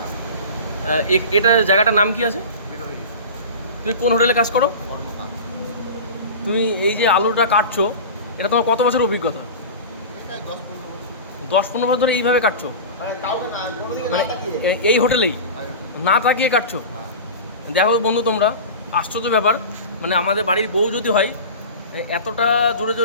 এটা জায়গাটার নাম কি আছে? বেরোই তুমি কোন হোটেলে কাজ করো? কর্মকার। তুমি এই যে আলুটা কাটছো, এটা তোমার কত বছর অভিজ্ঞতা? এটা 10-15 বছর। 10-15 বছর ধরে এইভাবে কাটছো? মানে কাউকে না, কোনোদিকে মানে না তাকিয়ে। এই হোটেলেই না তাকিয়ে কাটছো? হ্যাঁ। দেখো বন্ধু, তোমরা আশ্চর্য ব্যাপার, মানে আমাদের বাড়ির বউ যদি হয় এতটা জোরে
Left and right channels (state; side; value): inverted; both; correlation -0.31